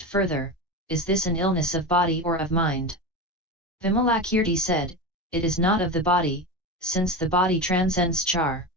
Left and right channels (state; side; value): normal; both; correlation 0.23